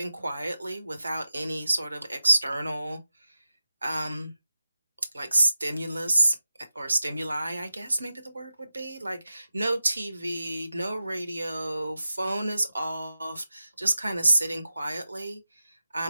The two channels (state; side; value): inverted; both; correlation -0.93